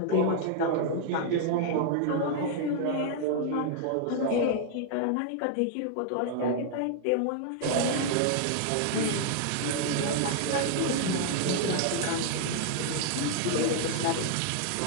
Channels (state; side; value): different; both; correlation 0.00